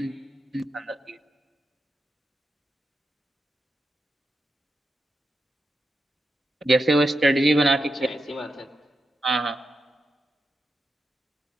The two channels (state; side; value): normal; both; correlation 0.87